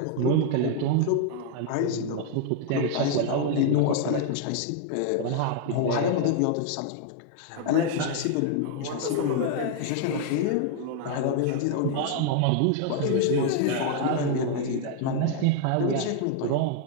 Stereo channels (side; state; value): both; different; correlation 0.00